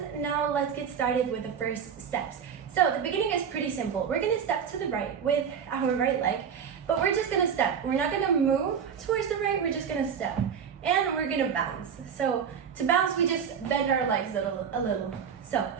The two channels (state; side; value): quieter; left; 7.3 dB